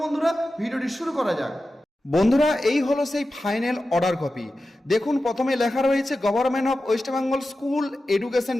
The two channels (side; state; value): both; normal; correlation 0.93